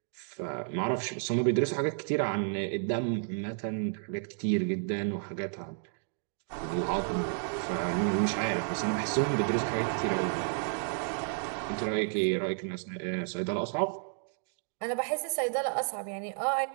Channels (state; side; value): silent; left; 57 dB below the other